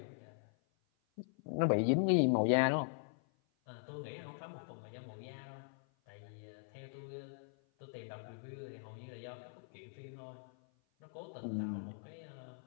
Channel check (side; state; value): right; silent; 51 dB below the other